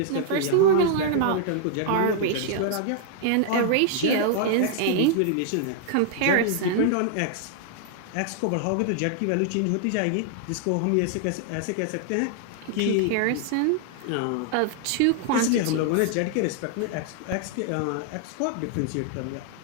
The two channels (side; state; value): both; different; correlation -0.01